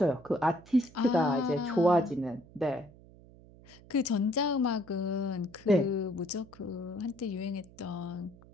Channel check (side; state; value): right; noise; hum, 23 dB below the sound